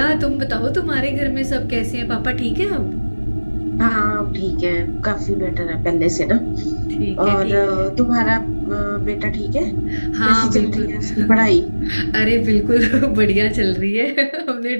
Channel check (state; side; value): inverted; both; correlation -1.00